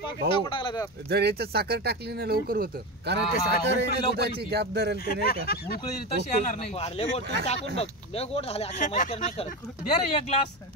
भाऊ. टाकून टाकलं त्यात. जर याच्यात साखर टाकली ना लवकर होतं. कारण ते हा, साखर आहे ना लवकर दुधाची येते. गॅप धरेल ते नाही का. उकळी तशी येणार नाही. लय गोड तू टाकून बघ. लय गोड झाले अक्षय मस्कर नाही करत. दे रे एक ग्लास.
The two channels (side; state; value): left; noise; hum, 29 dB below the sound